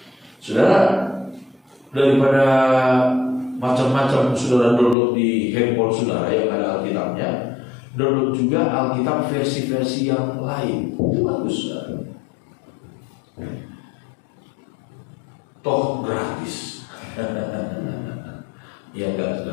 Saudara, daripada macam-macam saudara download di handphone saudara yang ada Alkitabnya, download juga Alkitab versi-versi yang lain. Itu bagus, saudara. Toh gratis. Ya enggak,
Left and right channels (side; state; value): right; drops out; at 5.0 s